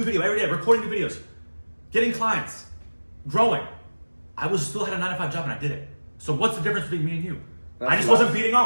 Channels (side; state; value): both; inverted; correlation -1.00